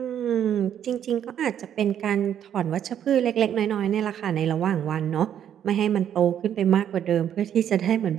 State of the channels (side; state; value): left; quieter; 9.7 dB